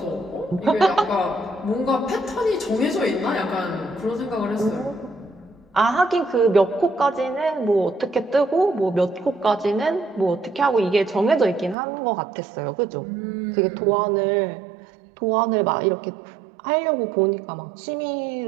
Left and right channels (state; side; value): drops out; left; at 11.8 s